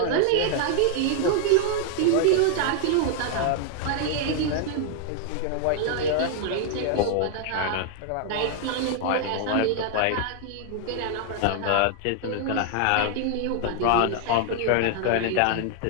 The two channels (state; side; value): different; both; correlation 0.00